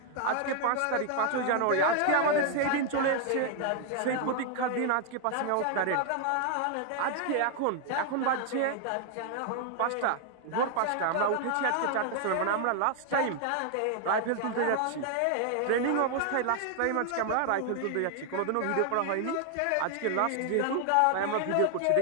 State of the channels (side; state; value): both; different; correlation 0.00